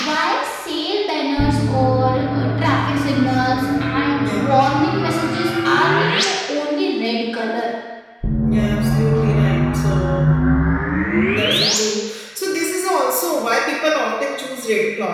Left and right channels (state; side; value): identical; both; correlation 1.00